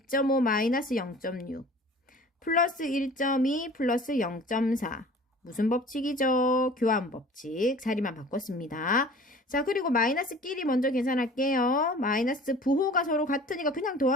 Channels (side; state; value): both; normal; correlation 0.45